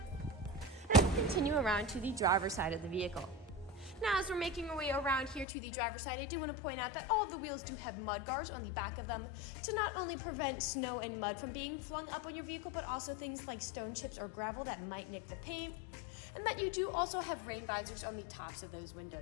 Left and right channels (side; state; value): right; drops out; at 5.5 s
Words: and continue around to the driver's side of the vehicle. Now, as we're making our way around here to the driver's side, I do want to point out that all of the wheels do have mud guards on the back of them to not only prevent snow and mud from being flung up on your vehicle, but also things like stone chips or gravel that might nick the paint. And that you do also have rain visors on the tops of those